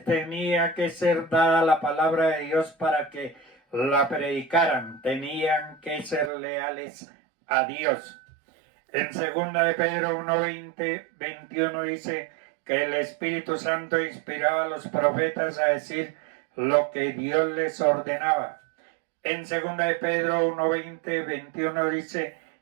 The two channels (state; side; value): drops out; left; at 6.3 s